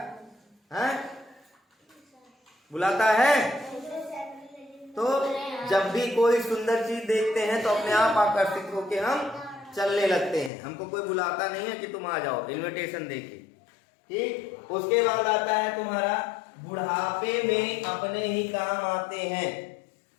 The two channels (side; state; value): right; drops out; at 10.5 s